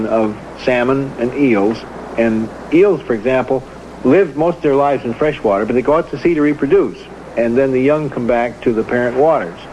of salmon and eels, and eels, for example, live most of their lives in fresh water, but they go out to sea to reproduce, and then the young come back to the parent waters.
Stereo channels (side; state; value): both; identical; correlation 1.00